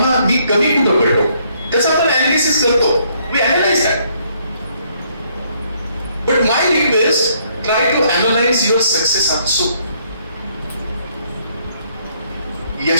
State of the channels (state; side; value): inverted; both; correlation -0.68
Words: मी कमी कुठं पडलो त्याचा आपण अनालिसिस अनालिसिस करतो, we analyse that. But my request, try to analyse your success also.